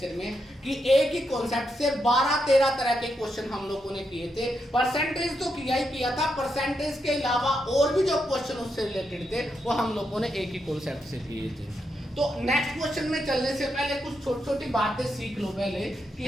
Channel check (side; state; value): both; normal; correlation 0.83